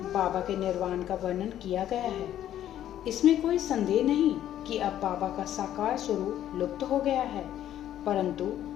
बाबा के निर्वाण का वर्णन किया गया है। इसमें कोई संदेह नहीं कि अब बाबा का साकार स्वरूप लुप्त हो गया है, परंतु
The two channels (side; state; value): right; quieter; 11.6 dB